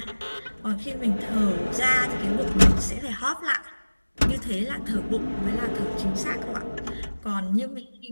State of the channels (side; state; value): both; inverted; correlation -1.00